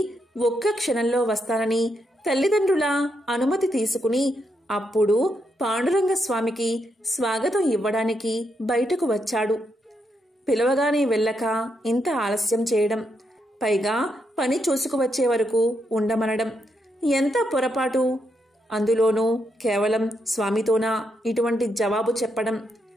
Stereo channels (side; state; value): both; normal; correlation 0.80